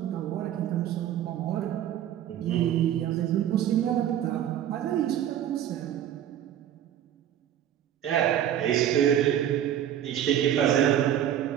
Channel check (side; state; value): left; quieter; 10.7 dB